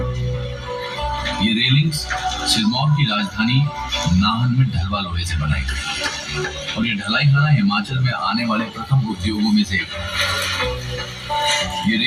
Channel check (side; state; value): both; identical; correlation 1.00